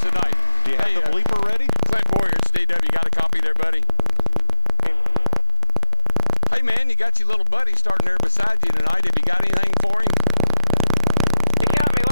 tonight? Do you have the bleeper ready? Clint Boyer, it's DW. Got a copy there, buddy? Hey, man, you got your little buddy starting there beside you tonight. Have you got anything for him? He got me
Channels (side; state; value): both; inverted; correlation -0.36